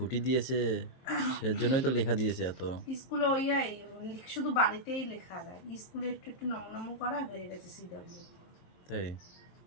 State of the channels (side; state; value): right; late; 23 ms